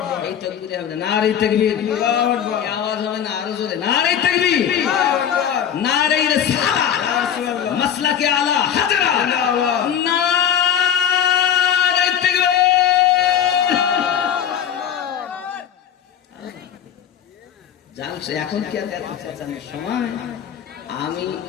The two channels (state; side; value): quieter; right; 9.2 dB